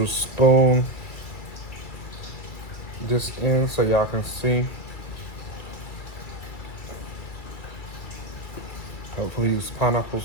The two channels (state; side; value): late; right; 2.3 ms